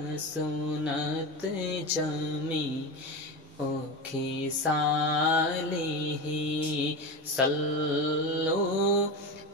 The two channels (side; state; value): both; normal; correlation 0.22